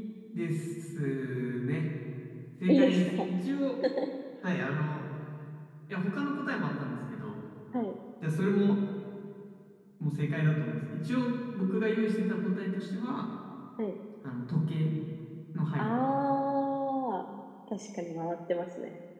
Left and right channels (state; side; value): identical; both; correlation 1.00